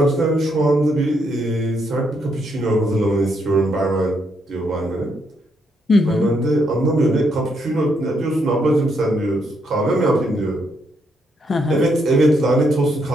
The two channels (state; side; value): normal; both; correlation 0.76